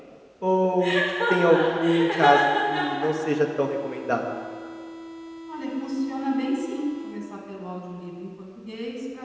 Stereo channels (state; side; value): identical; both; correlation 1.00